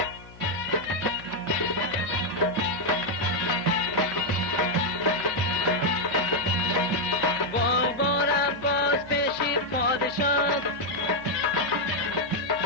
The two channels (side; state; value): left; noise; hum, 20 dB below the sound